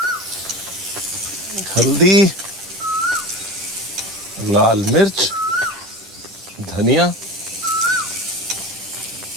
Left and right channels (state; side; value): normal; both; correlation 0.31